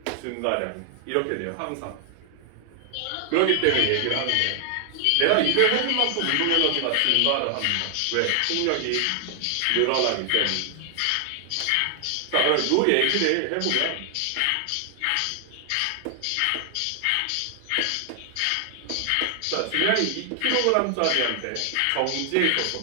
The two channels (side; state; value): both; different; correlation 0.00